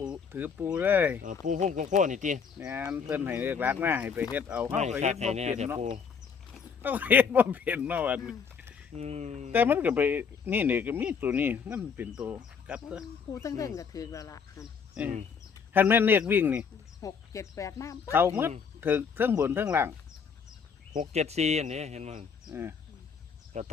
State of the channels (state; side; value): quieter; right; 6.2 dB